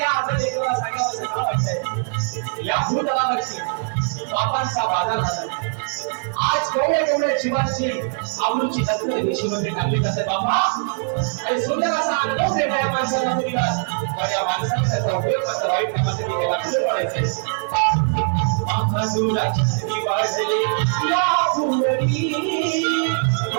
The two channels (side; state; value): left; silent; 64 dB below the other